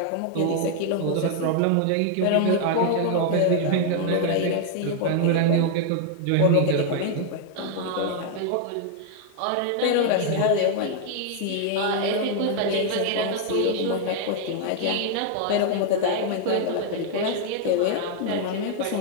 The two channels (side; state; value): both; different; correlation 0.00